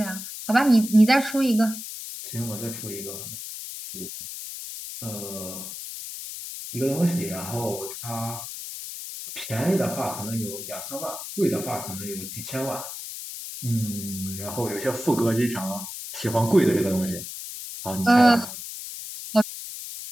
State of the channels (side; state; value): left; noise; hiss, 9 dB below the sound